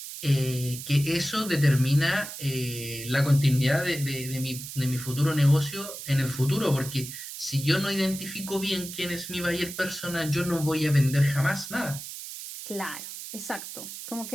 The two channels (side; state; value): right; noise; hiss, 10 dB below the sound